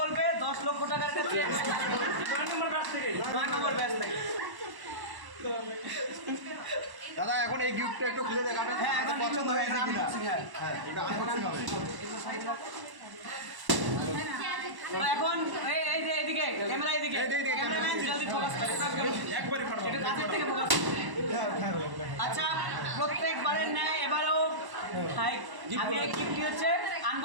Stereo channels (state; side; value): late; left; 1.1 ms